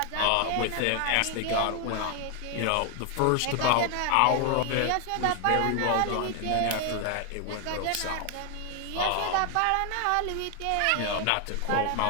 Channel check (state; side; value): different; both; correlation 0.00